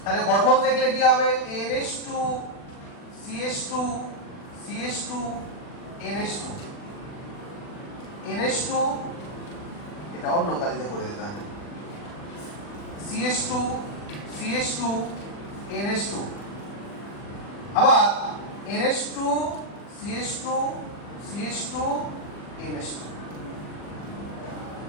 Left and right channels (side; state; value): right; late; 40 ms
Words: তাহলে গঠন দেখলে কি হবে? NH2 CH2 CH2 NH2 NH2, এটা অন্য কালিতে করে দিতে হবে, CH2 CH2 NH2, আবার NH2 CH2 CH2 NH2।